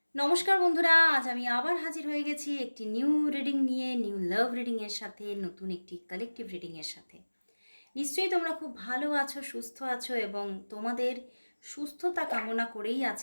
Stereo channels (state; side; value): inverted; both; correlation -1.00